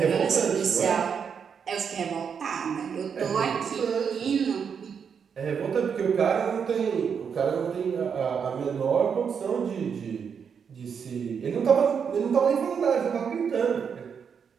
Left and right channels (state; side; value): quieter; left; 6.8 dB